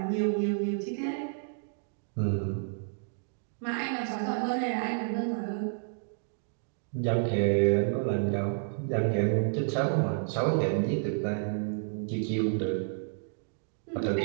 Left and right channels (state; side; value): silent; left; digital silence